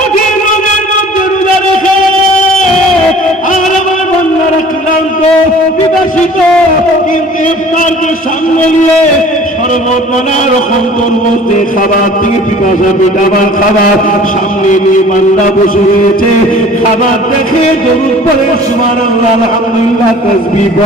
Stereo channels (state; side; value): normal; both; correlation 0.48